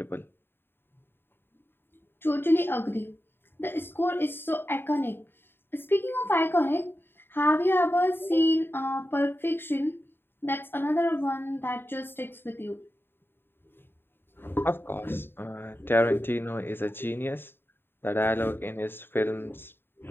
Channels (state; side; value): late; right; 0.10 ms